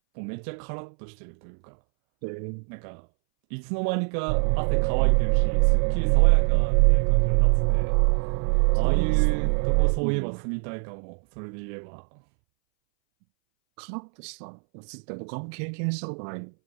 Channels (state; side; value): silent; left; 62 dB below the other